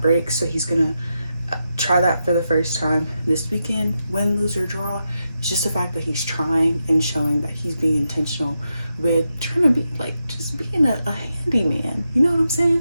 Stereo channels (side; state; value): both; inverted; correlation -0.87